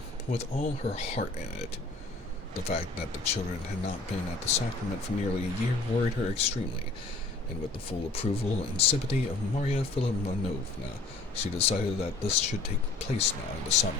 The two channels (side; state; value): right; quieter; 3.5 dB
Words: but with all her heart in it. The fact that the children had not been at the sacrament for nearly a year worried her extremely, and with the full approval and sympathy of Maria Filimonovna, she decided that this should take place now in the summer.